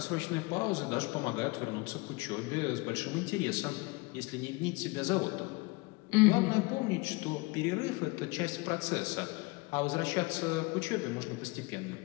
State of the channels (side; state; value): right; quieter; 25.6 dB